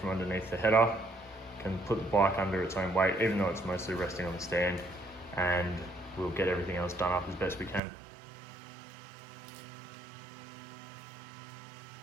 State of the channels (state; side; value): drops out; left; at 7.8 s